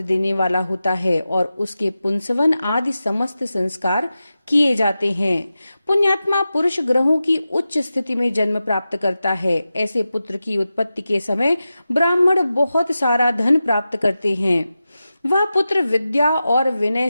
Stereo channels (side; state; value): both; inverted; correlation -0.93